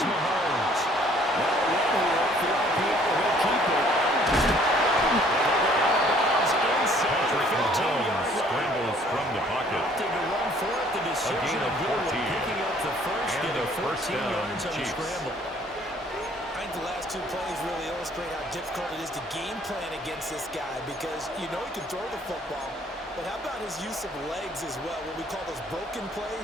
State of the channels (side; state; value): both; normal; correlation 0.59